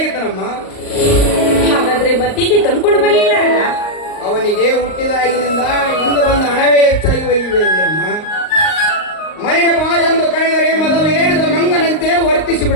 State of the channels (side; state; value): right; late; 38 ms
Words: ಹಾಗಾದ್ರೆ ಬತ್ತಿಗೆ ತಂದ್ಕೊಂಡು ಬರ್ಲಿಲ್ಲ ಅಣ್ಣ? ಅವನಿಗೆ ಹುಟ್ಟಿದಾಗಿನಿಂದ ಇಂದು ಬಂದ ಹಣವೇ ಹೆಚ್ಚಾಗಿ ಒಯ್ಯಿದೆ ಅಮ್ಮ. ಮನೆಗೆ ಬಾ ಎಂದು ಕರೆದರೆ ಮೊದಲು ಏರಿದ ಮಂಗನಂತೆ